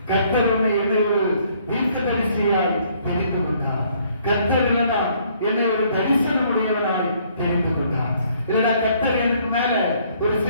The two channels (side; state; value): both; inverted; correlation -0.64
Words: கர்த்தர் என்னை ஒரு தீர்க்க தரிசியாய் தெரிந்து கொண்டார். கர்த்தர் என்னை ஒரு தரிசனம் உடையவனாய் தெரிந்து கொண்டார். இல்லைனா கர்த்தர் எனக்கு மேல ஒரு